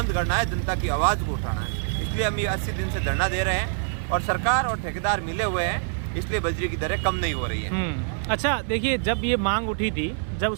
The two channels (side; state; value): left; silent; digital silence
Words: करना है, जनता की आवाज़ को उठाना है। इसलिए हम ये 80 दिन से धरना दे रहे हैं और सरकार और ठेकेदार मिले हुए हैं, इसलिए बजरी की दरें कम नहीं हो रही है। अच्छा, देखिए, जब ये मांग उठी थी, जब